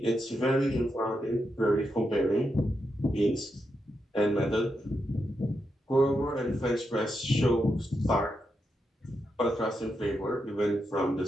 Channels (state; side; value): normal; both; correlation 0.85